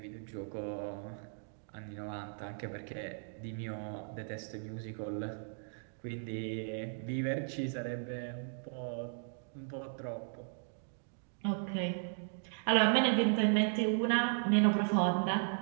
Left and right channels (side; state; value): left; silent; digital silence